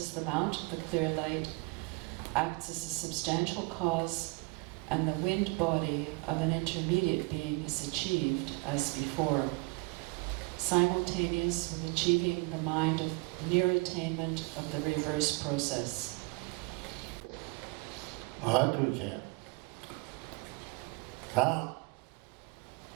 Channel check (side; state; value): left; quieter; 29.2 dB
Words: the mount of the clear light acts as a substantial cause, and the wind body of an intermediate being is achieved as before, simultaneous with achieving the mind of near attainment of the reverse process.